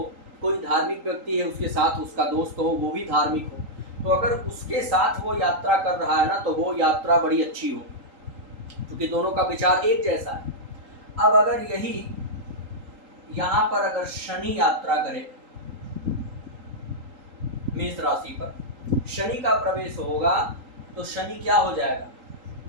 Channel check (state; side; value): late; left; 3.8 ms